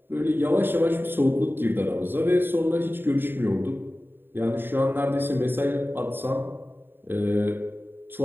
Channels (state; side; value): late; left; 0.098 ms